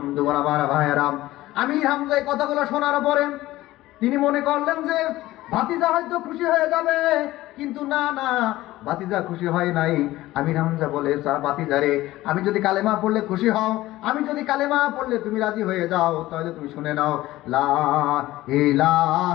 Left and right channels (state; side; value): quieter; right; 16.7 dB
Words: আমার ভাইয়েরা, আমির হামজা এই কথাগুলো শোনার পরে তিনি মনে করলেন যে ভাতিজা হয়তো খুশি হয়ে যাবে, কিন্তু না না, ভাতিজা খুশি হয় নাই। আমির হামজা বলে, ভাতিজা রে, আমি যদি কালেমা পড়লে খুশি হও, আমি যদি কালেমা পড়লে তুমি রাজি হয়ে যাও, তাহলে তুমি শুনে নাও, লা